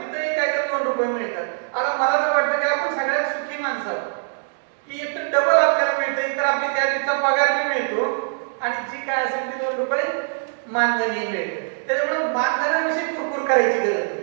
काहीतरी 2 रुपये मिळतात. आता मला तर वाटतं की आपण सगळ्यात सुखी माणसं आहोत की एक तर डबल आपल्याला मिळतं, एक तर आपली त्या दिवसा पगार बी मिळतो आणि जी काय असेल ती 2 रुपये मानधनही मिळते. त्याच्यामुळे मानधनाविषयी कुरकुर करायची गरज नाही.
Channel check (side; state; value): left; silent; 63 dB below the other